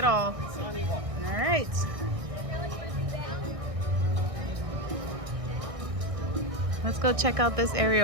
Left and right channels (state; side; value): late; left; 1.6 ms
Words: all. All right. Let's go check out this